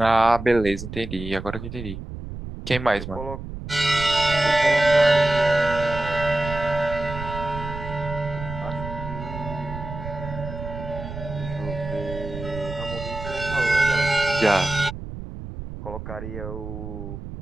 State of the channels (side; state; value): right; noise; rumble, 9 dB below the sound